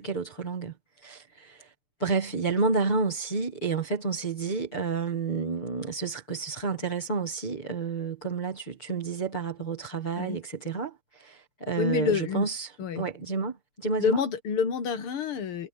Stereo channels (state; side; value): late; right; 6.8 ms